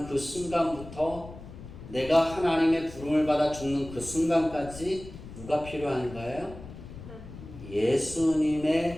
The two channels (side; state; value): left; noise; rumble, 14 dB below the sound